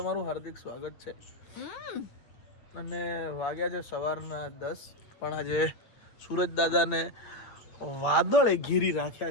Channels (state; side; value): late; right; 8.7 ms